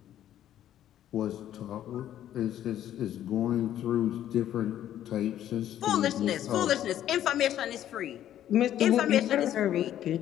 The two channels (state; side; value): quieter; right; 11.6 dB